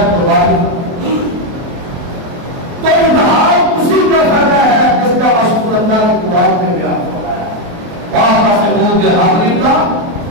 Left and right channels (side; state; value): left; late; 23 ms